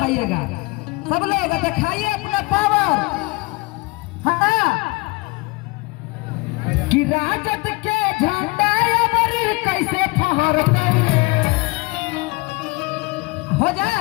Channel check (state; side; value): quieter; right; 25.1 dB